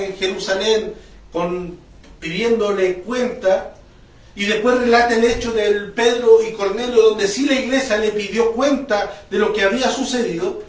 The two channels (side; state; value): both; identical; correlation 1.00